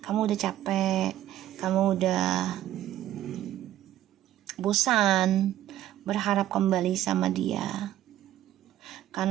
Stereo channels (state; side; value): quieter; left; 12.9 dB